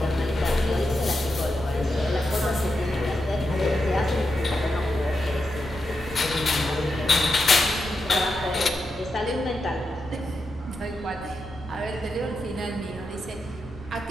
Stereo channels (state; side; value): normal; both; correlation 0.87